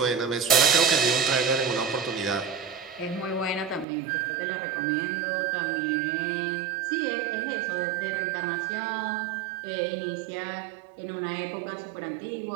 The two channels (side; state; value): left; drops out; at 3.9 s